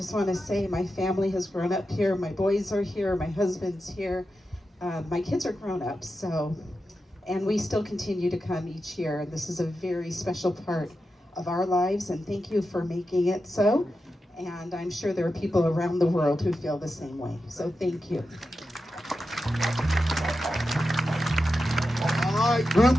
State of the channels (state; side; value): normal; both; correlation 0.90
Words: want to say my family has grown up here. My boys are here, my husband's here. My kids are grown up, and we still continue to come each year. And this is a very special part of our lives, and thank you for making it so. And I'm sure there are people around the world who feel the same way. So thank you. All right, group